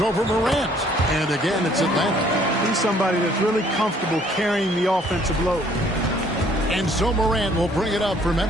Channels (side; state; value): both; normal; correlation 0.61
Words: over Morant. And again, it's Atlanta. He's somebody that's really comfortable carrying the offensive load. And so Morant will bring it up for